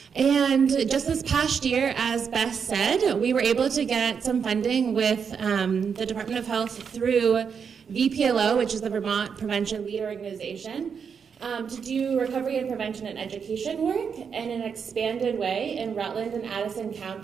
And just this past year, as Beth said, we were able to get some funding with the Department of Health through VPLO, which is the Vermont Prevention Lead Organization, to do recovery and prevention and education work in an expanded way in Rutland and Addison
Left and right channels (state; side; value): quieter; left; 6.6 dB